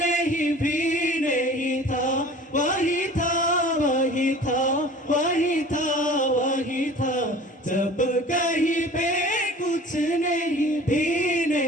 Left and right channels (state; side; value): normal; both; correlation 0.44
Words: भी नहीं था वही था वही था वही था वही था जब कहीं पे कुछ नहीं भी